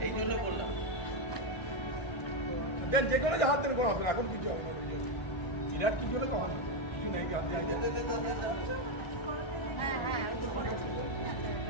এই জন্য বললাম। দেন যে কোনো হাত দেন কোনো হবে না, এখন কিছু হবে না। চিরার কি হলে তো হবে না। কিছু নেই কি হাত দিয়ে হ্যাঁ হ্যাঁ ওই তো করে।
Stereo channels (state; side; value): late; right; 1.3 ms